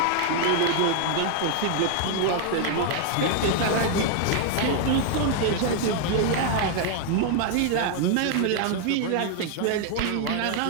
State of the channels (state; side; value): different; both; correlation 0.00